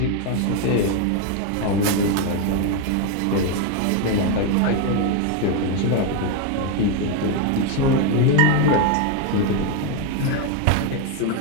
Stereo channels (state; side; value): different; both; correlation 0.02